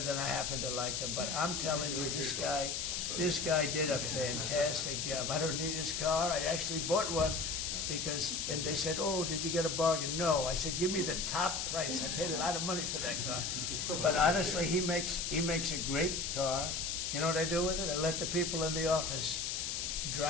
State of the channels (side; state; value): left; noise; hiss, 1 dB below the sound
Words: than I happen to like him. But I'm telling you, this guy This guy did a fantastic job. I don't need his car. I actually bought one because, and they said, oh, did you get a bargain? No. I said, give me the top price. I paid a lot of money for that car. But honestly, he makes a great car. You know what I do with it? I let the people in the office